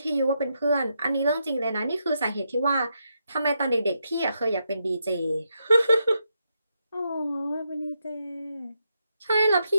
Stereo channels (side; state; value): both; inverted; correlation -0.82